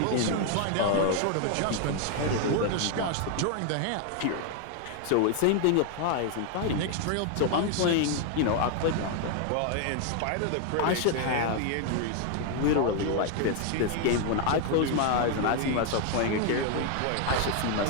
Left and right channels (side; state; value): both; different; correlation 0.00